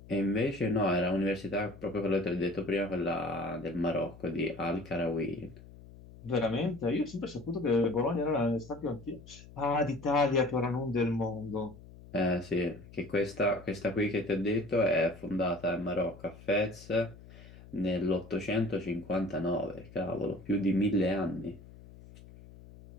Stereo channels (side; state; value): left; noise; hum, 19 dB below the sound